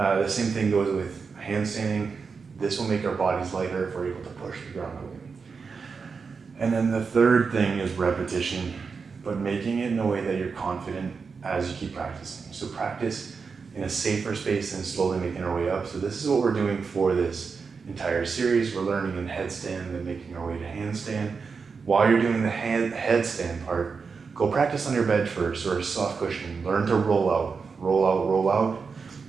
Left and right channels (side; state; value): left; quieter; 5.2 dB